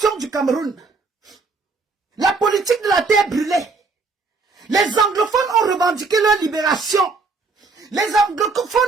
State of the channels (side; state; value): left; quieter; 4.2 dB